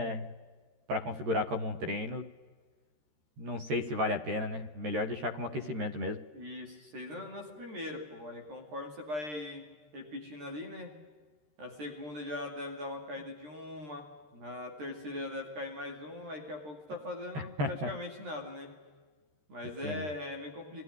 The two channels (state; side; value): late; left; 13 ms